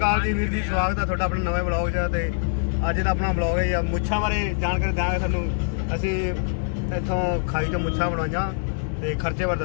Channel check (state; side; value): silent; right; 63 dB below the other